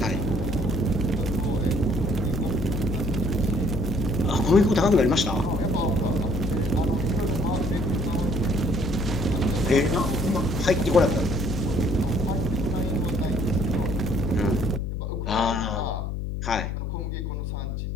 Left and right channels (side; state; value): left; noise; hum, 3 dB below the sound